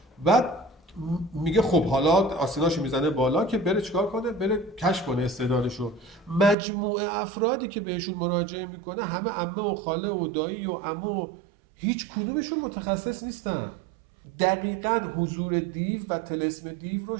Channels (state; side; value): drops out; left; at 6.6 s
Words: بعد میگه خب حالا آسیناشو میزنه بالا که بره چیکار کنه، بره کشف کنه استعدادشو. مجموعه افرادی که بهشون مراجعه میکنه همه عمه و خاله و دایی و عمو، هیچ کدومشون متخصص نیستن. دقیقاً حضور دیو و طلسم دیو رو